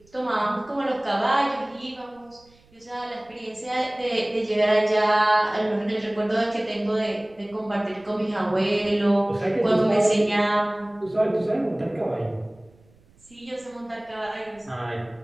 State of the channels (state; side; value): noise; right; rumble, 30 dB below the sound